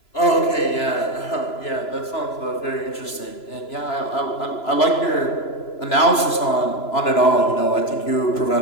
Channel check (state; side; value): late; right; 3.0 ms